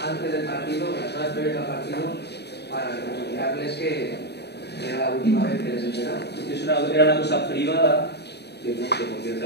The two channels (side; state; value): right; late; 0.48 ms